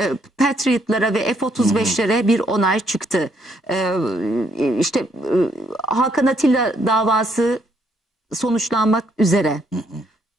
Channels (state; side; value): normal; both; correlation 0.71